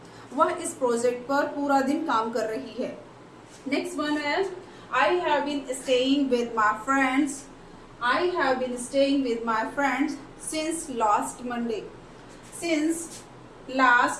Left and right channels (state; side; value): identical; both; correlation 1.00